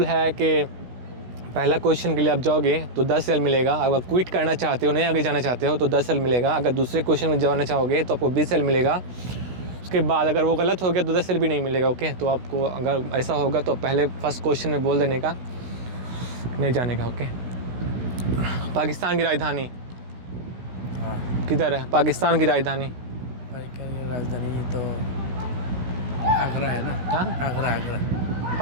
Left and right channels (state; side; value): late; left; 16 ms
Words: है कि पहला क्वेश्चन के लिए आप जाओगे तो 10 रियाल मिलेगा। अगर क्विट करना चाहते हो, नहीं आगे जाना चाहते हो तो 10 रियाल मिलेगा। अगर दूसरे क्वेश्चन में जाना चाहोगे तो आपको 20 रियाल मिलेगा। उसके बाद अगर वो गलत हो गया तो 10 रियाल भी नहीं मिलेगा। ओके तो आपको अगर ऐसा होगा तो पहले फर्स्ट क्वेश्चन में बोल देने का, नहीं जाने का। ओके पाकिस्तान की राजधानी किधर है? पाकिस्तान की राजधानी तो आगरा है ना? हाँ आगरा।